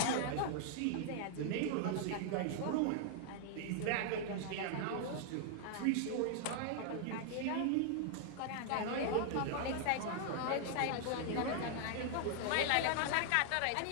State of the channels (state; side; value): different; both; correlation -0.01